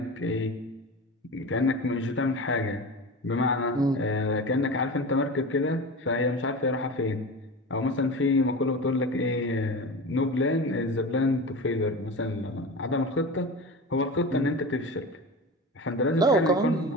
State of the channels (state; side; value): normal; both; correlation 0.29